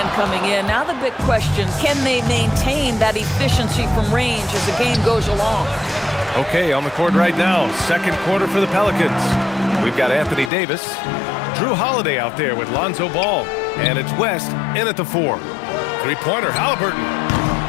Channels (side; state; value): right; drops out; at 10.5 s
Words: coming in. Now the big question, can they maintain that efficiency from range as the game goes along? Okay, on the court right now, second quarter for the Pelicans. We've got Anthony Davis, Drew Holiday out there with Lonzo Ball, and it's West in at the 4. Three-pointer, Halliburton.